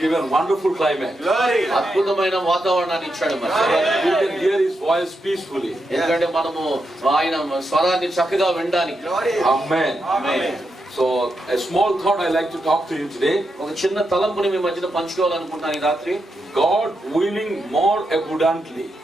given wonderful climate. అద్భుతమైన వాతావరణాన్ని ఇచ్చాడు. మరి We can hear His voice peacefully. ఎందుకంటే మనము ఆయన స్వరాన్ని చక్కగా వినడానికి. Amen. Amen. So a small thought I like to talk to you today. ఒక చిన్న తలంపుని మీ మధ్యన పంచుకోవాలనుకుంటున్నాను ఈ రాత్రి. God willing more abundantly.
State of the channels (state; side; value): normal; both; correlation 0.85